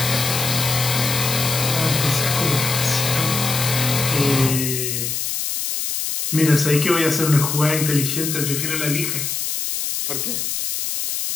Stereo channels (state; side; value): noise; left; hiss, 2 dB below the sound